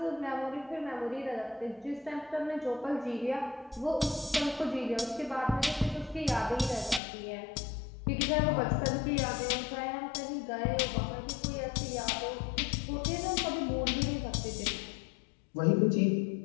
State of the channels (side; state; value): right; drops out; at 7.0 s